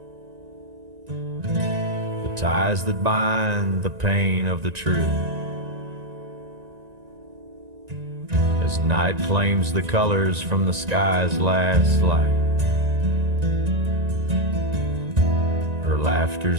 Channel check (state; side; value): late; left; 1.9 ms